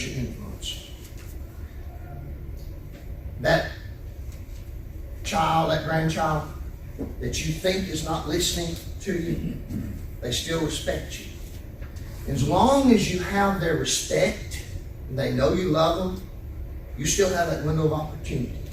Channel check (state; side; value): identical; both; correlation 1.00